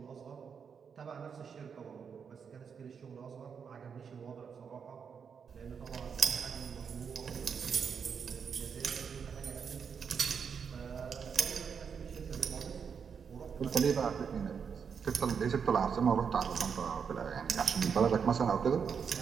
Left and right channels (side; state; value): left; quieter; 6.6 dB